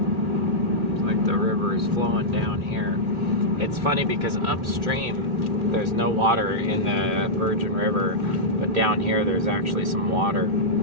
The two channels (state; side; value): late; left; 2.0 ms